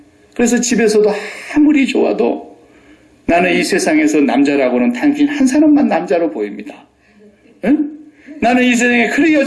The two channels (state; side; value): identical; both; correlation 1.00